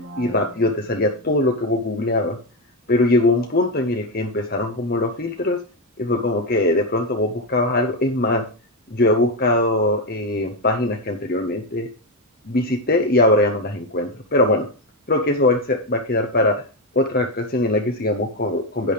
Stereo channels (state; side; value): normal; both; correlation 0.09